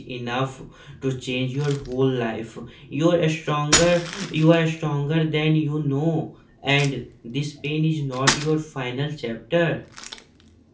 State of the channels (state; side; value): identical; both; correlation 1.00